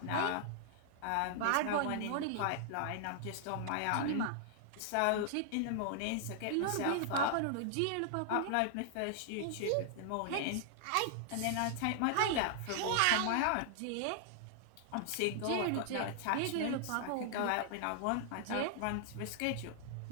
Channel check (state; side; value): different; both; correlation -0.01